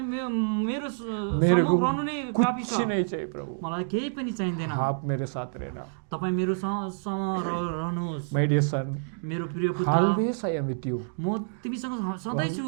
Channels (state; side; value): silent; left; digital silence